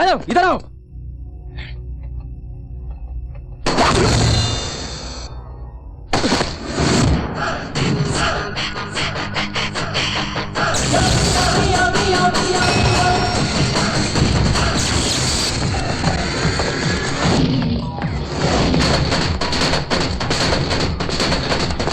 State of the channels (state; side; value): identical; both; correlation 1.00